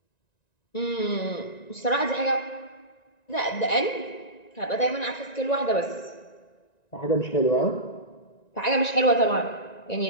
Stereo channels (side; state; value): right; late; 1.9 ms